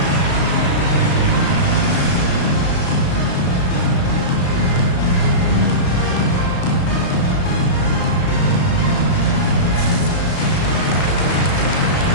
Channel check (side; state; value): right; late; 34 ms